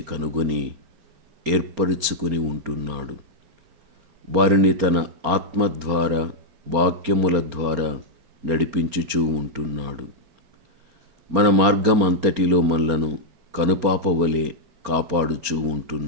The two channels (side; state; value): left; late; 4.3 ms